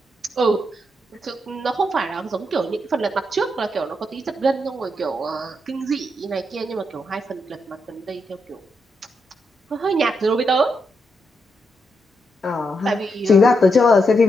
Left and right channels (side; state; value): both; normal; correlation 0.82